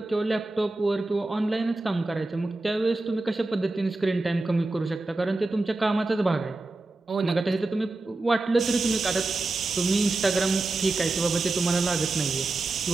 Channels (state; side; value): quieter; left; 3.1 dB